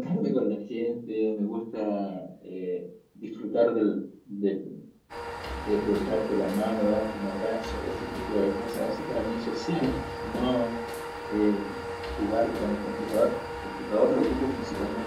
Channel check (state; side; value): identical; both; correlation 1.00